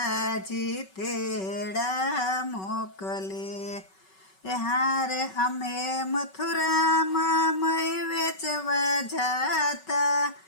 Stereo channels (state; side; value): late; right; 5.3 ms